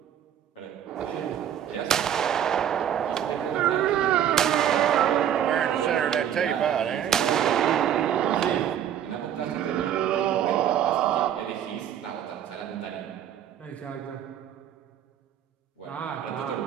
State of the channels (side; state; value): left; quieter; 9.8 dB